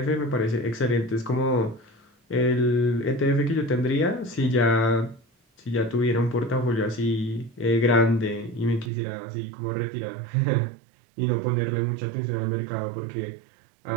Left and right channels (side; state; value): left; drops out; at 8.9 s